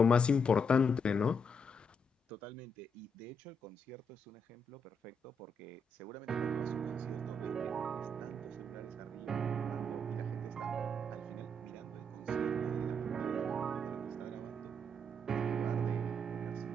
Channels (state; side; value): normal; both; correlation 0.77